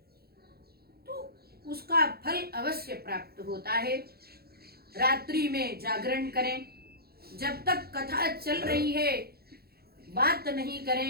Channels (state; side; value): late; left; 0.45 ms